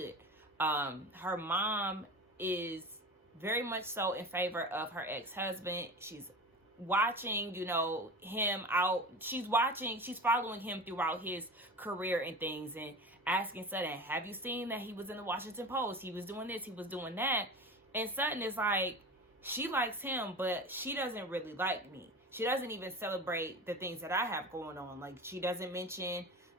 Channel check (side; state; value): both; normal; correlation 0.32